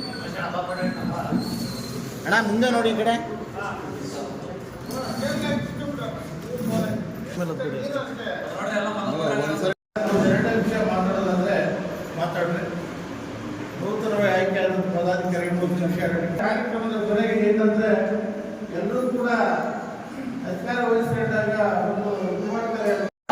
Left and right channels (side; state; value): both; identical; correlation 1.00